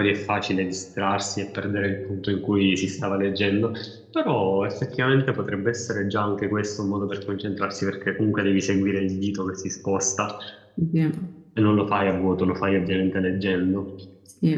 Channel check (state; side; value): identical; both; correlation 1.00